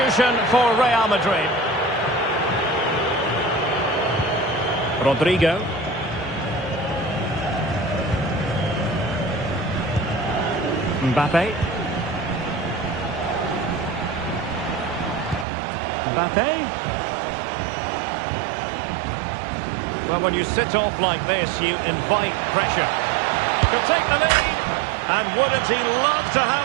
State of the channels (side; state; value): left; drops out; at 15.5 s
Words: for Real Madrid. Rodrigo. Mbappe. Mbappe. Well, when you sit off like this, you invite pressure. Could take the lead. And wouldn't he love to